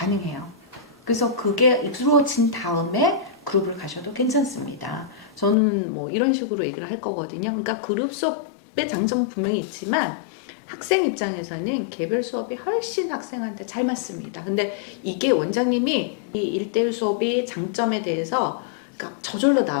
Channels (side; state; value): right; drops out; at 5.6 s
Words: 그래서 그게 이루어진 다음에 그룹을 가셔도 괜찮습니다. 저는 뭐 이런 식으로 얘기를 할 거거든요. 그러니까 그룹 수업의 장점은 분명히 있지만 학생 입장에서는 개별 수업이 훨씬 학생한테 잘 맞습니다. 근데 이게 원장님이 이 1대1 수업이 장점에 대해서 그러니까 저절로